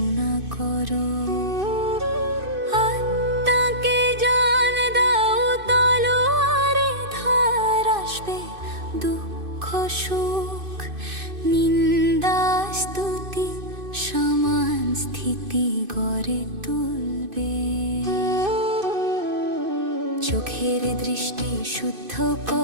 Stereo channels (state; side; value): late; left; 2.5 ms